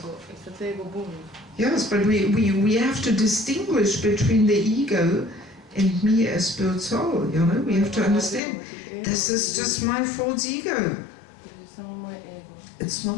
Yes, but we have to distinguish between the ego and me as spirit soul, you know. We have to understand, this is just my false ego. It's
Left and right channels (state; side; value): drops out; right; at 8.4 s